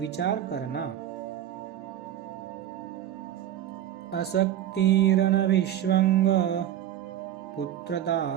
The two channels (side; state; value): left; quieter; 11.6 dB